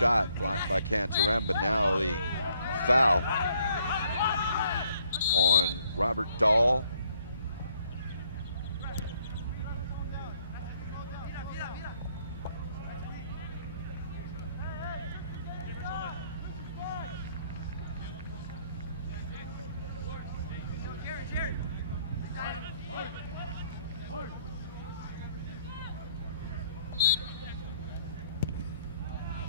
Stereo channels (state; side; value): inverted; both; correlation -0.67